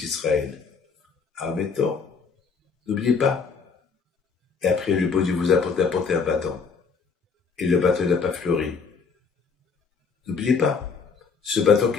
Admettons, n'oubliez pas. Et après, le bon Dieu vous a apporté un bâton, et le bâton n'a pas fleuri. N'oubliez pas, ce bâton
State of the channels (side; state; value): right; quieter; 5.3 dB